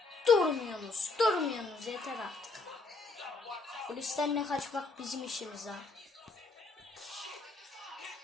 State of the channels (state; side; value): quieter; right; 3.7 dB